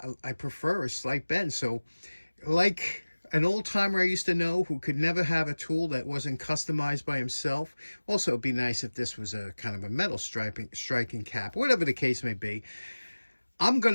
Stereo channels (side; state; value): both; inverted; correlation -1.00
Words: I prefer a slight bend. So, like an old timer I used to know who could never have a tool that wasn't customized by himself. Also, it'd be nice if this was a kind of a metal striking cap, whatever the case may be. I'm going